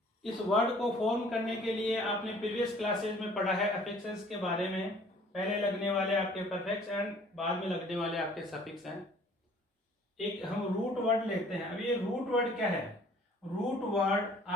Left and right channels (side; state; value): both; normal; correlation 0.55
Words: इस वर्ड को फॉर्म करने के लिए आपने प्रीवियस क्लासेज में पढ़ा है अफिक्सेस के बारे में। पहले लगने वाले आपके परफेक्ट्स एंड बाद में लगने वाले आपके सफिक्स हैं। एक हम रूट वर्ड लेते हैं। अब ये रूट वर्ड क्या है? रूट वर्ड